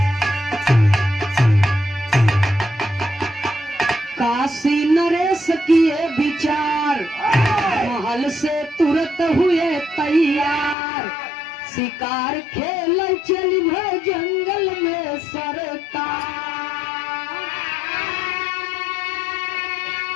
काशी नरेश किए विचार महल से तुरंत हुए तैयार शिकार खेल चली भय जंगल में सरकार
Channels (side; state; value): right; drops out; at 10.8 s